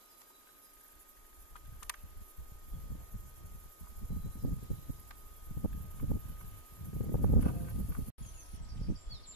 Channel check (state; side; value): late; right; 3.0 ms